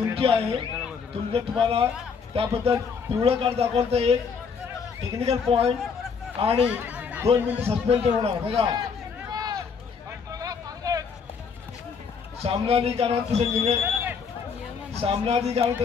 आहे. तुम्हाला त्याबद्दल पिवळं कार्ड दाखवलं तर एक टेक्निकल पॉईंट आणि 2 मिनिट सस्पेंड होणार. बघा सामनाधिकाऱ्यांनी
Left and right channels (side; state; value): right; quieter; 5.9 dB